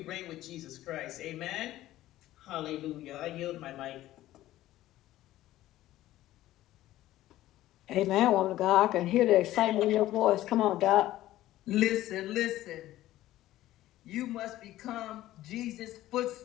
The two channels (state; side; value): quieter; right; 14.9 dB